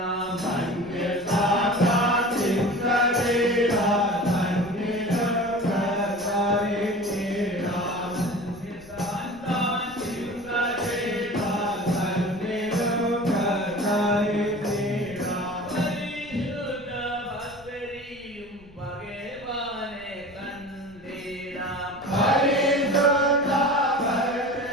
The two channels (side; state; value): left; noise; rumble, 24 dB below the sound